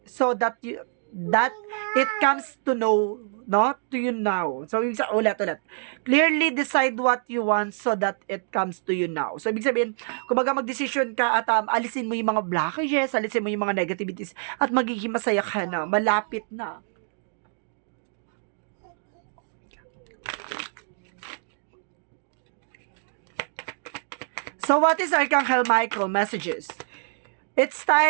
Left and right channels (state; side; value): silent; left; 61 dB below the other